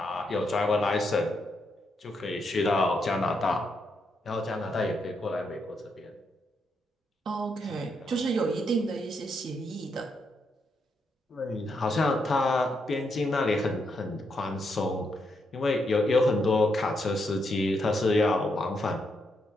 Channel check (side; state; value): both; normal; correlation 0.80